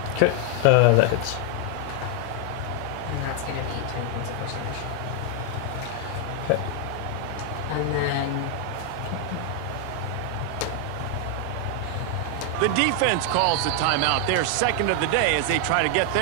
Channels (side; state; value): both; different; correlation 0.00